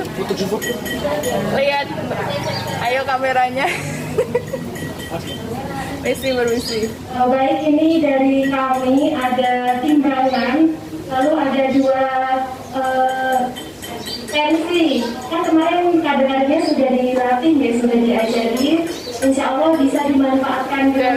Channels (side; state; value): both; identical; correlation 1.00